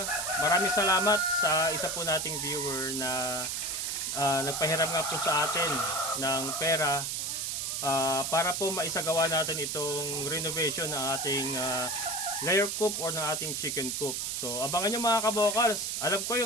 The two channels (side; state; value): right; noise; hiss, 2 dB below the sound